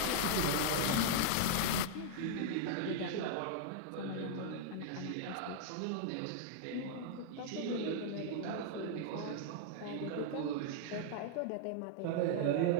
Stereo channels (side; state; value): both; different; correlation -0.01